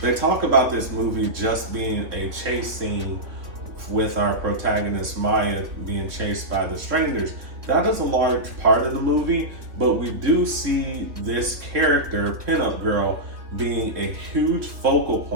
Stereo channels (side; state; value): left; late; 3.3 ms